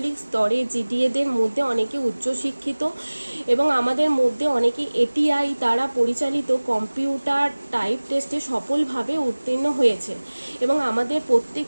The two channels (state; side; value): inverted; both; correlation -1.00